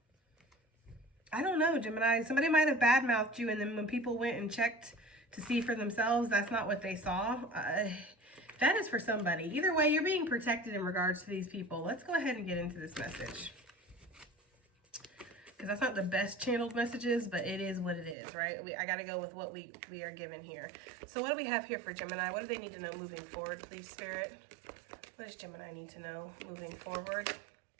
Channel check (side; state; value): left; drops out; at 18.2 s